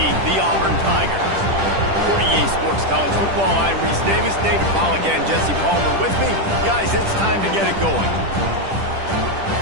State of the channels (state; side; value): late; left; 10 ms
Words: the Auburn Tigers. For EA Sports College Football, I'm Reese Davis, David Pollack, and Jesse Palmer with me. Guys, it's time to get it going.